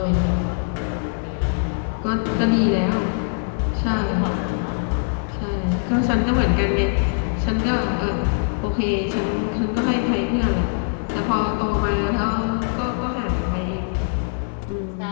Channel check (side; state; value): right; silent; digital silence